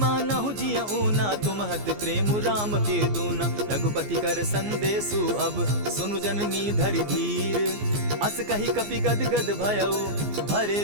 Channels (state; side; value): late; left; 14 ms